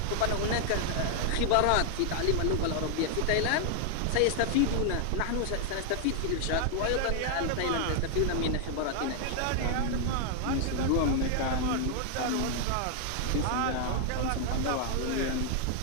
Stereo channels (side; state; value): both; different; correlation 0.00